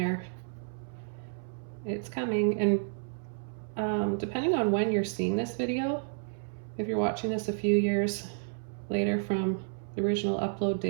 It's coming, and depending on when you're seeing this video, if you're watching this a few years later from the original upload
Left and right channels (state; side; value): silent; left; 57 dB below the other